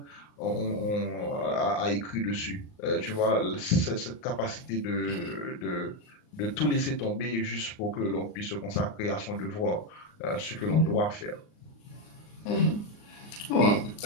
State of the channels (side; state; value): right; late; 39 ms